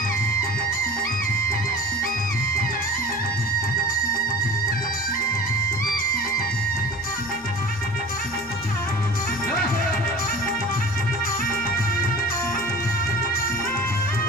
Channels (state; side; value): noise; right; rumble, 28 dB below the sound